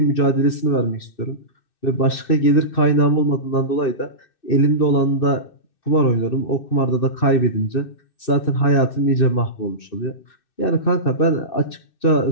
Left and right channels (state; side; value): late; right; 2.6 ms